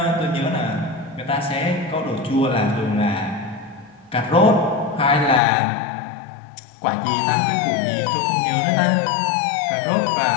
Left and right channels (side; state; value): right; drops out; at 5.4 s